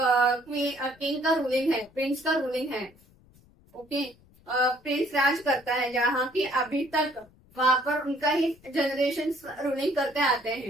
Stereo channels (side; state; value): left; noise; rumble, 28 dB below the sound